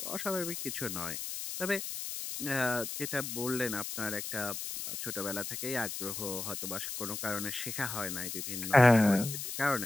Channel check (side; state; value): left; noise; hiss, 6 dB below the sound